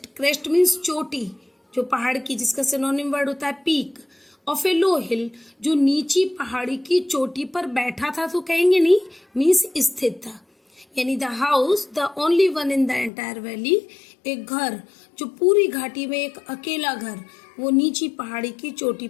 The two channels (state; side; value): drops out; right; at 13.1 s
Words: मीन्स चोटी, जो पहाड़ की, जिसका सिनोनिम वर्ड होता है पीक। ऑफ ए लो हिल, जो नीची पहाड़ी की चोटी पर बैठा था तो कहेंगे नहीं, मीन्स स्थित था। यानी the house the only one in the entire valley, एक घर जो पूरी घाटी में एक अकेला घर, वो नीची पहाड़ी की चोटी